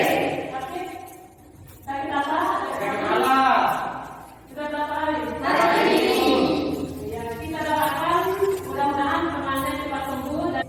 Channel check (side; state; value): both; identical; correlation 1.00